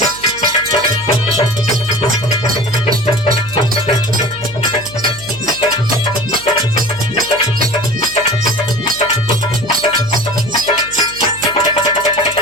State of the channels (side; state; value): right; noise; hum, 19 dB below the sound